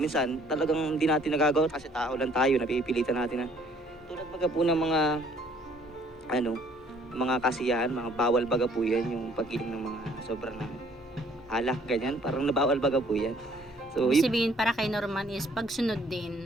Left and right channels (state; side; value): normal; both; correlation 0.60